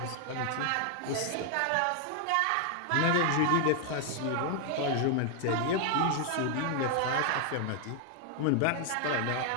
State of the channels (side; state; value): both; different; correlation 0.00